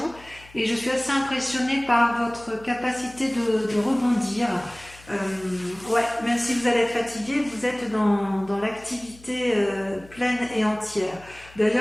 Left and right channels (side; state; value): left; noise; hum, 23 dB below the sound